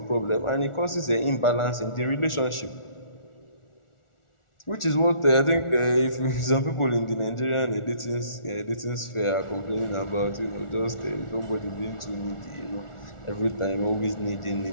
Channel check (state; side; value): late; right; 1.4 ms